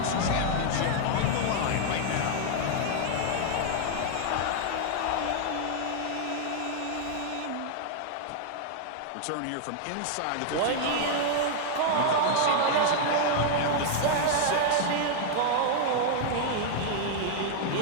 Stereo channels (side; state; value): both; different; correlation -0.01